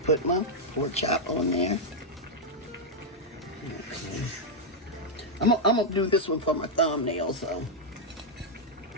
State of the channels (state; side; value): normal; both; correlation -0.03